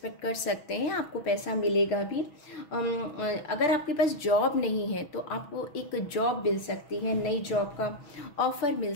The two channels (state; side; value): late; right; 6.2 ms